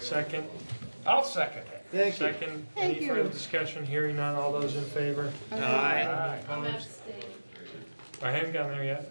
Second? I'll second it. Thank you. Second. Thank Any you. further discussion? Hearing none. All those in favor? Aye. I'm Opposed? abstaining. I haven't gotten there yet.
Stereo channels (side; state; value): both; inverted; correlation -1.00